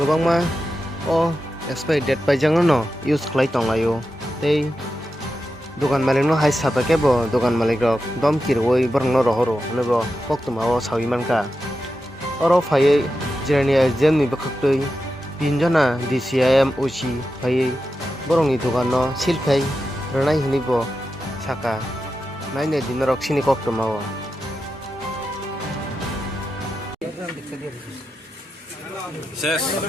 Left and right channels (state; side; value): normal; both; correlation 0.90